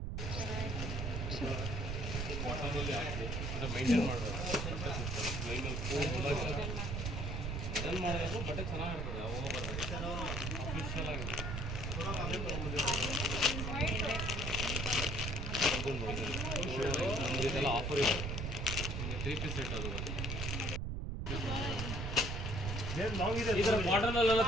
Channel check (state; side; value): noise; right; rumble, 2 dB below the sound